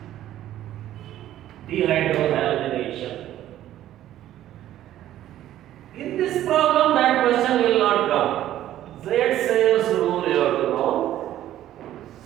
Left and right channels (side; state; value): left; quieter; 12.8 dB